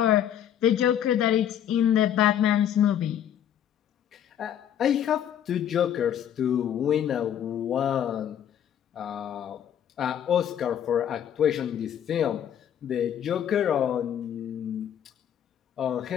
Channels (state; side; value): quieter; right; 9.8 dB